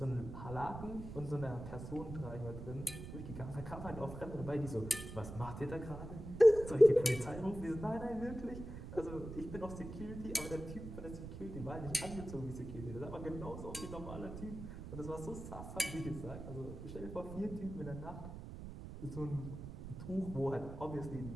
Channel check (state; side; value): noise; right; rumble, 9 dB below the sound